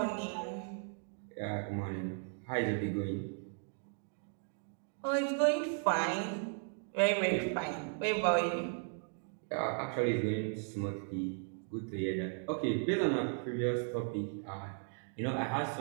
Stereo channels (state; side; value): silent; left; 54 dB below the other